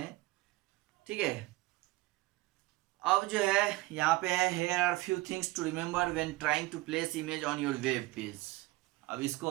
ठीक है। अब जो है यहाँ पे है, here are few things to remember when trying to place image on your web page। अब इसको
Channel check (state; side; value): quieter; left; 19.8 dB